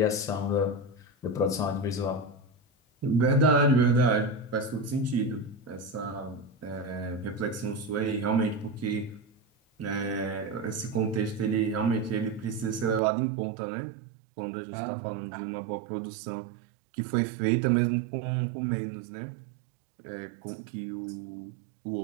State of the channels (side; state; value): left; drops out; at 13.0 s